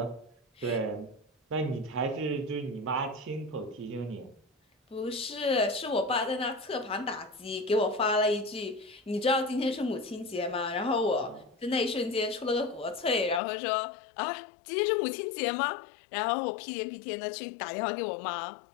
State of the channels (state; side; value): drops out; right; at 13.4 s